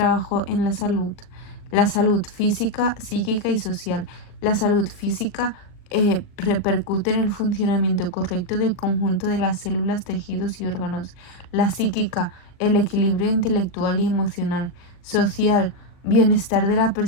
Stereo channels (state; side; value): late; right; 39 ms